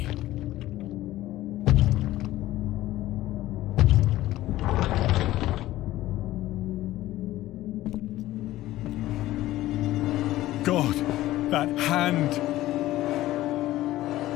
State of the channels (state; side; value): quieter; right; 15.6 dB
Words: God, that hand!